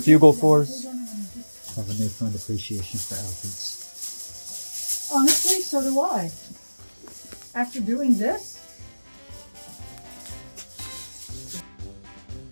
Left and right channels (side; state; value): both; inverted; correlation -1.00